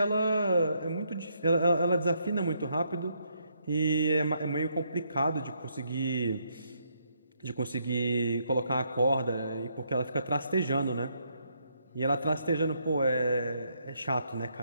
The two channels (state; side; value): inverted; both; correlation -0.74